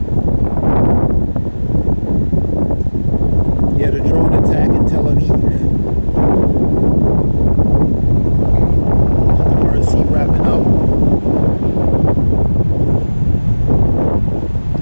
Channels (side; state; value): both; inverted; correlation -1.00